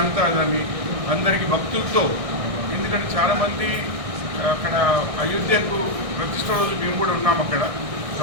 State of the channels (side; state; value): left; late; 1.6 ms